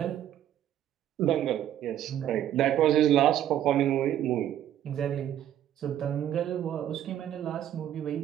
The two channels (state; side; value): quieter; left; 11.2 dB